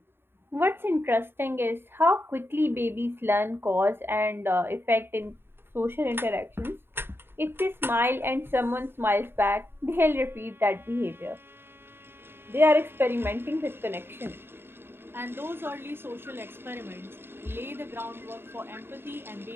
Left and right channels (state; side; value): late; left; 0.11 ms